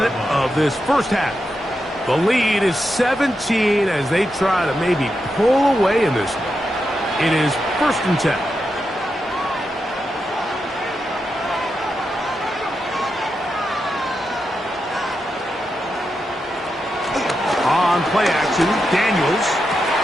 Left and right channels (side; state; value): both; normal; correlation 0.87